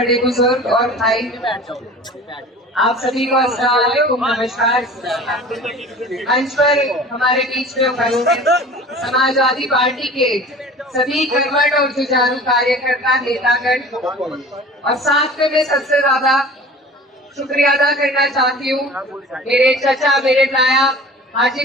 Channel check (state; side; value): normal; both; correlation 0.41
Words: बुजुर्ग और भाई, आप सभी को अस्सलाम वालेकुम, नमस्कार। मंच पर हमारे बीच में उपस्थित समाजवादी पार्टी के सभी कर्मठ और जुझारू कार्यकर्ता, नेतागण, और साथ में मैं सबसे ज्यादा शुक्रिया अदा करना चाहती हूँ मेरे चचा, मेरे नायब हाजी